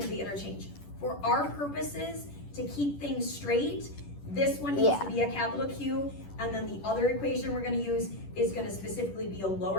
be interchanged. For our purposes, to keep things straight, this one needs Yeah. to be a capital Q, and then the other equation we're gonna use is gonna specifically be a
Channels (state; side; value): late; right; 10 ms